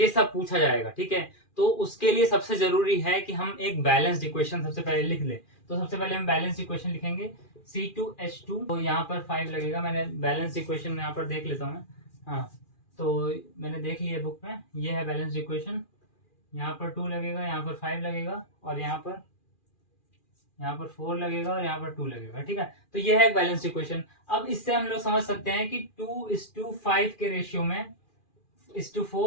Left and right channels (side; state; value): right; late; 2.4 ms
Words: सब पूछा जाएगा, ठीक है। तो उसके लिए सबसे जरूरी है कि हम एक बैलेंस्ड इक्वेशन सबसे पहले लिख लें। तो सबसे पहले हम बैलेंस्ड इक्वेशन लिखेंगे C2H2, तो यहाँ पर 5 लगेगा, मैंने बैलेंस्ड इक्वेशन यहाँ पर देख लेता हूँ मैं, हाँ तो मैंने देख लिया बुक में, ये है बैलेंस्ड इक्वेशन, यहाँ पर 2 लगेगा, यहाँ पर 5 लगेगा, और यहाँ पर 4 लगेगा, और यहाँ पर 2 लगेगा, ठीक है। तो ये है एक बैलेंस्ड इक्वेशन। अब इससे हम लोग समझ सकते हैं कि 2:5 के रेशियो में,